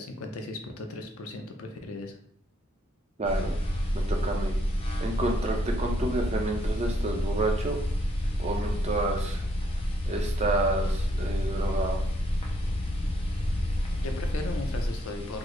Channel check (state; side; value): normal; both; correlation 0.72